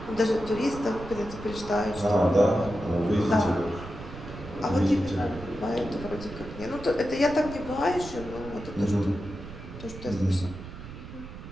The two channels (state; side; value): noise; right; rumble, 13 dB below the sound